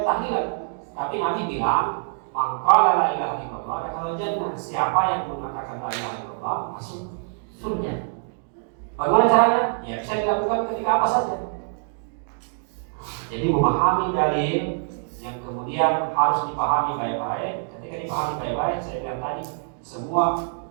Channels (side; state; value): left; silent; 62 dB below the other